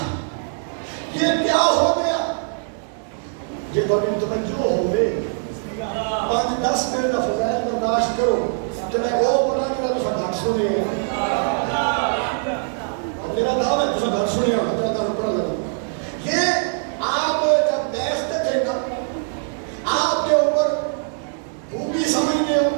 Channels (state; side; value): silent; left; 58 dB below the other